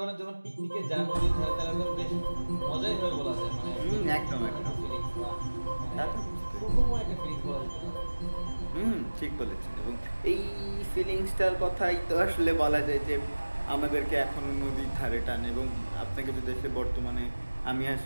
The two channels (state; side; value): inverted; both; correlation -1.00